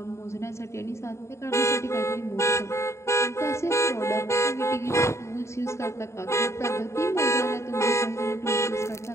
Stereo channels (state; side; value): late; right; 0.14 ms